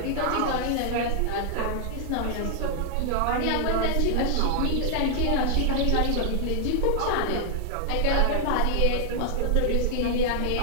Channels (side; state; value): both; different; correlation -0.01